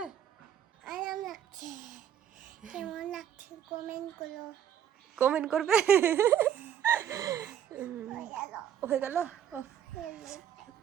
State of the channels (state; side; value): quieter; left; 9.6 dB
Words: আরাম লাগছে। কেমন লাগছে কমেন্ট করবে। হয়ে গেল।